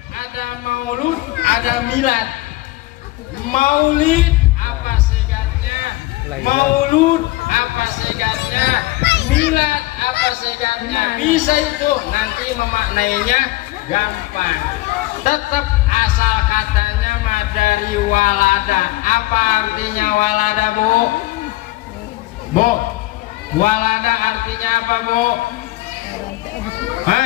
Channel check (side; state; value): right; quieter; 18.7 dB